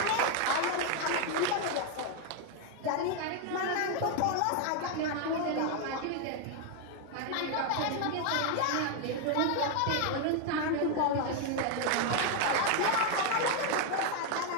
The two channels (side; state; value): both; different; correlation 0.01